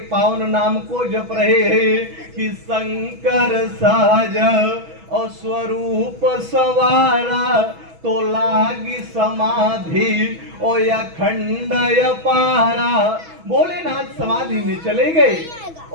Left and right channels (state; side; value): late; left; 6.1 ms